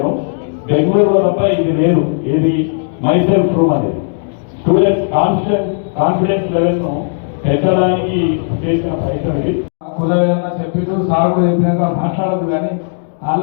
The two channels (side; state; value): right; silent; digital silence